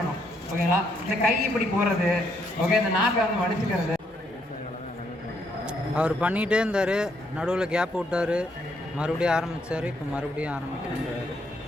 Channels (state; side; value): normal; both; correlation 0.73